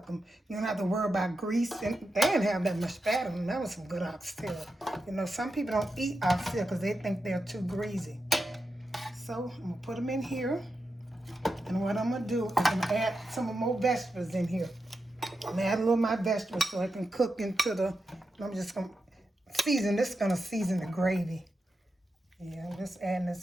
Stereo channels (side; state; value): both; normal; correlation 0.88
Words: them. You don't have to worry about grease. And they didn't have that much fat in them. That was some good oxtail. You know, some people don't eat oxtail because they think they're too greasy. So I'm going to put them in here. And what I'm going to do is I'm going to add some more vegetables in here. I'm going to add a little of my vegetables so I can cook into the, I'm just going to season. This is going to season the gravy. Yeah, I'm just adding